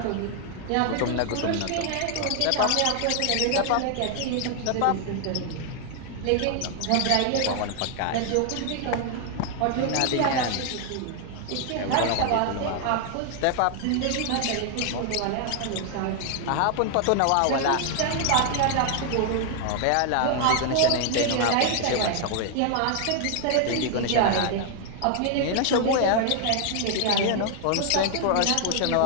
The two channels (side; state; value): both; different; correlation 0.00